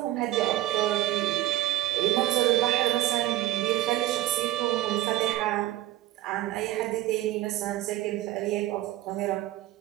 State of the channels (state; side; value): quieter; left; 15.5 dB